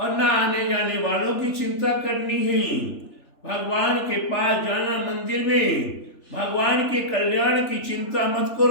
ना आने जाने वालों की चिंता करनी है। भगवान के पास जाना मंदिर में, भगवान के कल्याण की चिंता मत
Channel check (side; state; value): right; late; 3.3 ms